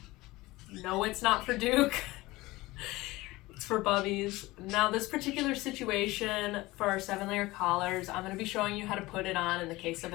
No, it's not for Duke. It's for Bubbies. Now this particular situation for our 7-layer collars, I'm going to be showing you how to put it on in the case of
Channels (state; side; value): quieter; right; 20.0 dB